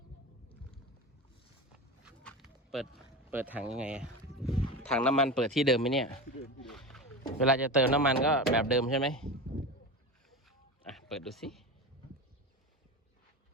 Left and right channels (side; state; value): both; normal; correlation 0.25